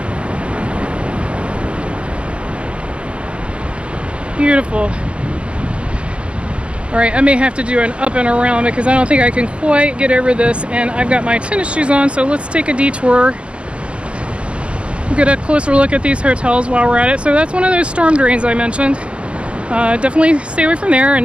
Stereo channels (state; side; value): late; left; 0.059 ms